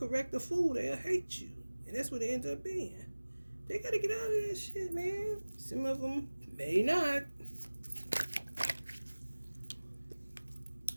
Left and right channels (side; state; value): both; inverted; correlation -1.00